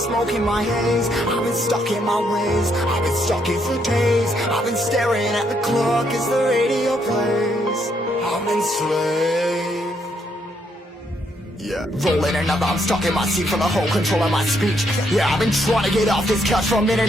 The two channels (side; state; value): both; normal; correlation 0.74